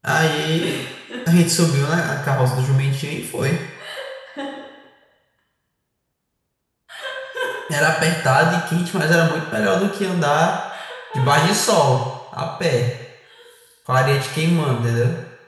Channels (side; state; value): both; identical; correlation 1.00